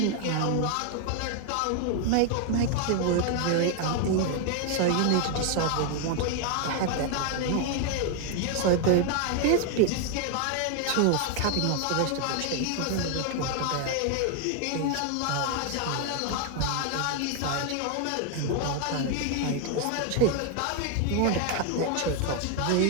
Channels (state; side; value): different; both; correlation 0.00